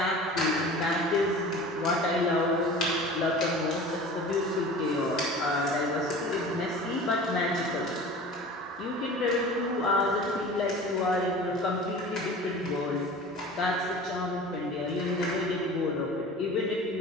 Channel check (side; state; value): both; normal; correlation 0.39